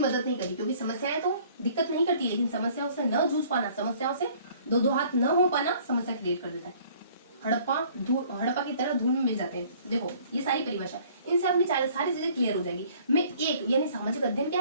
नहीं करी। क्योंकि समस्याएं तो दिक्कत नहीं करती, लेकिन समस्याओं से न जूझ पाना, समस्याओं से दो हाथ न हो पाना समस्या क्रिएट कर देता है। हड़प्पा की तरह धूल में मिल जाते हैं। देखो ये सारी परिभाषा, इनसे अपनी सारी चीजें क्लियर हो जाएगी। मैं एक यानी सामाजिक अध्ययन क्या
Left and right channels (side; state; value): both; inverted; correlation -0.55